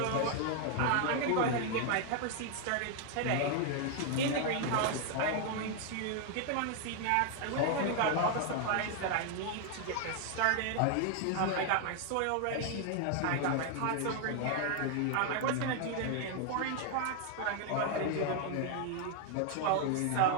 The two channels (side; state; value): both; different; correlation 0.00